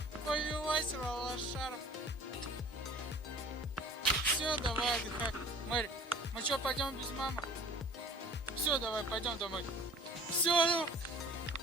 Повелась лошара. Все, давай отдыхай. Мэри, мы что, пойдем без мамы? Все, давай, пойдем домой. Все, ну,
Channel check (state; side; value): normal; both; correlation 0.48